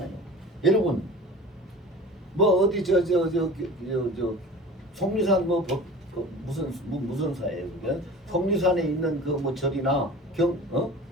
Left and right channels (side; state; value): both; normal; correlation 0.39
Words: 여러분, 뭐 어디 속리산 무슨 사예요? 그게 속리산에 있는 그 뭐 절이나